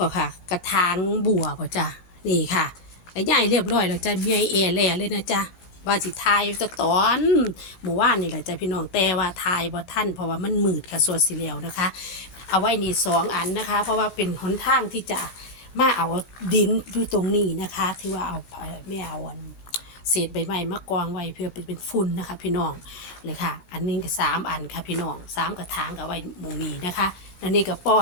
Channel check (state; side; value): late; right; 17 ms